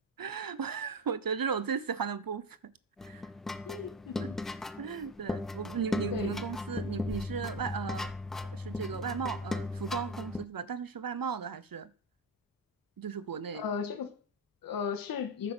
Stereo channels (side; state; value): both; normal; correlation 0.21